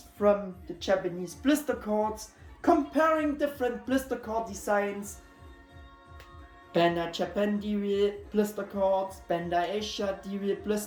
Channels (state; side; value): identical; both; correlation 1.00